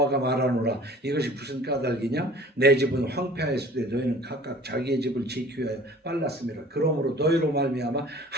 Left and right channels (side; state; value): both; normal; correlation 0.47